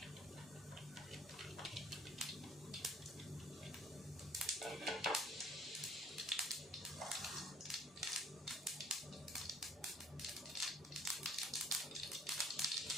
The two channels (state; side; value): normal; both; correlation 0.56